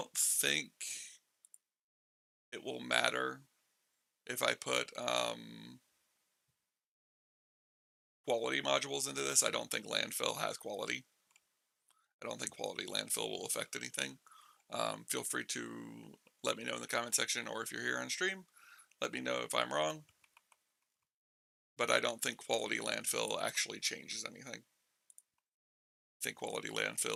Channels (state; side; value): identical; both; correlation 1.00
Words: think it will matter if I put quality modules into this. I don't think landfill has quality. I don't think quality landfill will affect anything. Feel free to let me know in the comment section, or if you're here on stream, let me know if I'm wrong. But I don't think quality landfill actually changes anything. I think quality